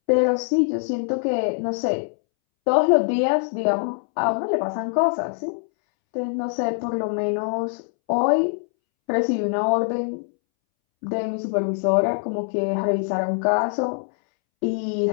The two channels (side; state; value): right; silent; 63 dB below the other